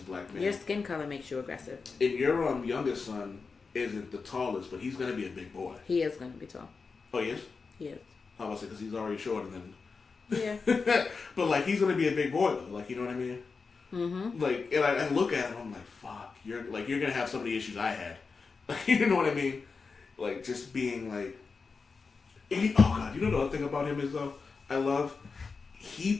black male. Your skin color makes you aggressive. And your youngest son isn't the tallest, but he's going to be a big boy. He is going to be tall. Oh, he is? He is. How about I say, because he's already shorter than... Yeah. But, like, he's going to be a big boy, though. Like, you know what I mean? Mm-hmm. Like, and I look at him, I'm like, fuck, you're going to have some of the issues I had. Like, you know what I mean? Like, just being, like... oh, God, you know the other thing about him is, though? I love... He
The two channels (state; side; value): quieter; right; 4.7 dB